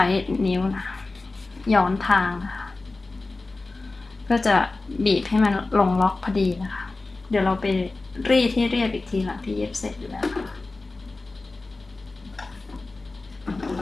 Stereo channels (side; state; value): right; quieter; 3.4 dB